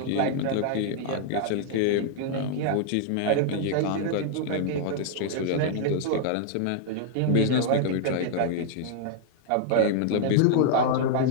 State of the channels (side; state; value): both; different; correlation -0.01